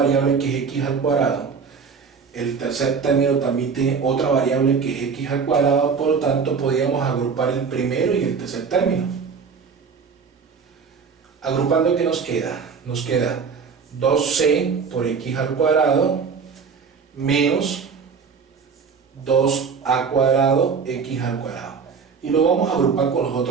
que es x al cuadrado, el tercer término también tiene otra variable que es x al cuadrado, por lo tanto podríamos agrupar el primero y el tercer término. Agrupando, ¿qué nos queda? Nos queda 2c por x al cuadrado menos 2a cuadrado x al cuadrado. Y lo vamos a agrupar con los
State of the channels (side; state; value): left; quieter; 5.7 dB